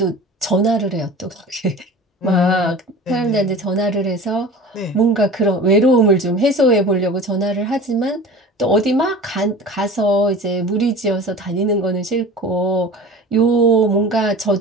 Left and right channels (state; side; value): normal; both; correlation 0.38